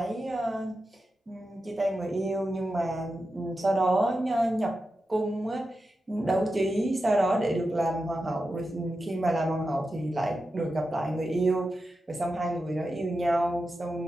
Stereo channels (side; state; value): both; normal; correlation 0.90